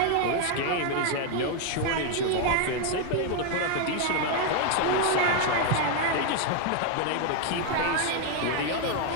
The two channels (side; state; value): both; different; correlation 0.01